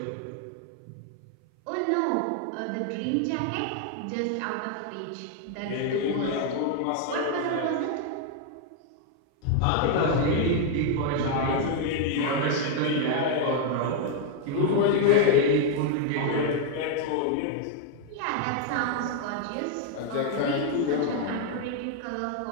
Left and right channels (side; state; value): both; different; correlation 0.00